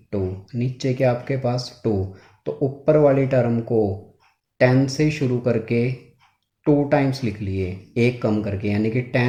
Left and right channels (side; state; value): both; identical; correlation 1.00